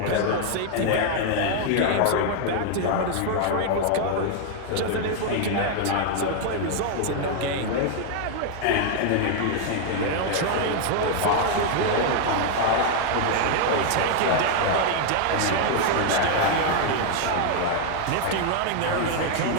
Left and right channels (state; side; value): different; both; correlation 0.00